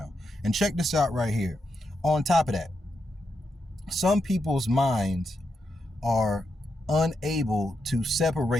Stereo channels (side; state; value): both; normal; correlation 0.84